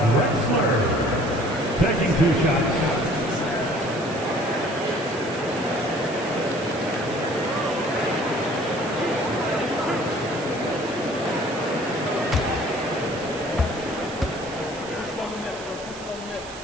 Drexler. Taking 2 shots.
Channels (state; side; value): noise; right; hiss, 16 dB below the sound